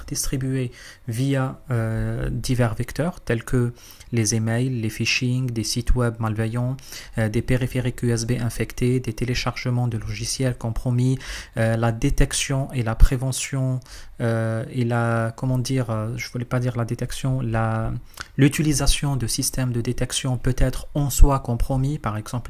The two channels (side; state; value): both; identical; correlation 1.00